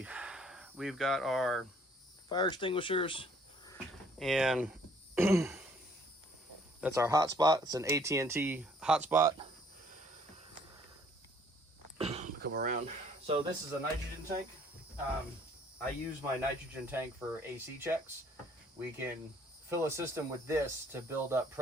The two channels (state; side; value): normal; both; correlation 0.60